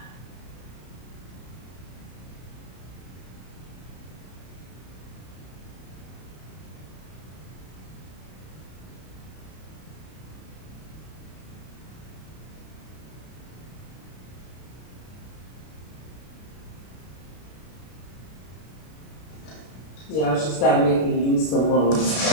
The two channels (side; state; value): right; late; 33 ms